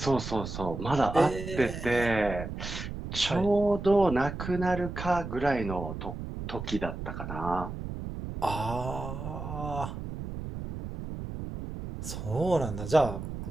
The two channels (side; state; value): right; noise; rumble, 7 dB below the sound